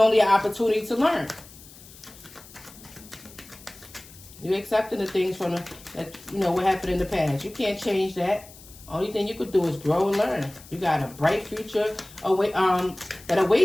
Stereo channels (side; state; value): left; noise; hiss, 20 dB below the sound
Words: an opportunity to learn. You're accepting the things from what happened in the past. You can't change that. Only thing you could do is grow and learn. You got a bright future that